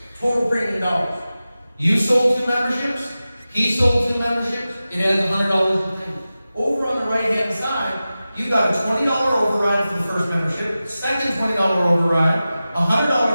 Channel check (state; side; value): inverted; both; correlation -0.95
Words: total premium dollars. You sold 2 memberships. He sold 2 memberships. It adds $100 in premium. Over on the right-hand side, you got a $20 override for the first membership, second $20 override, a